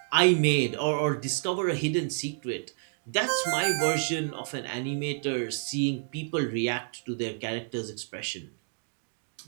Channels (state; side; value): silent; left; digital silence